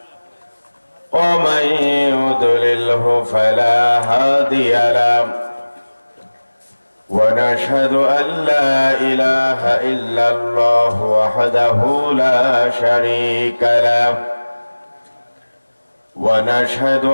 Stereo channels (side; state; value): both; inverted; correlation -1.00